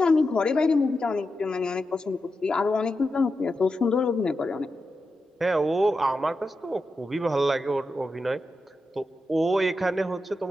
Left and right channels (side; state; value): both; normal; correlation 0.89